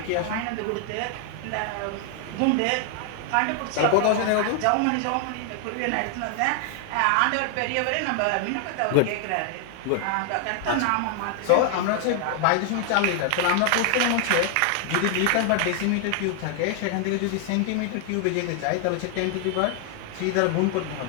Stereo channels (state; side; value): different; both; correlation 0.00